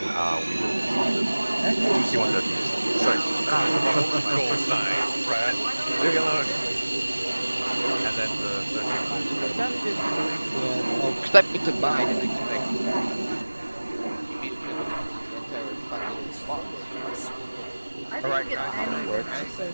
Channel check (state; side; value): inverted; both; correlation -1.00